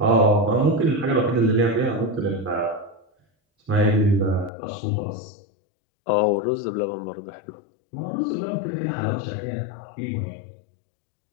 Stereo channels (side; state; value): right; drops out; at 4.5 s